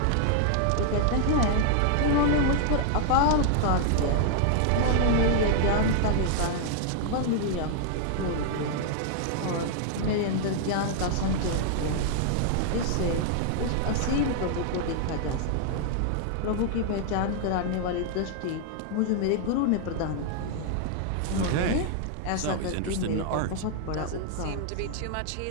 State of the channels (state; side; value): different; both; correlation 0.00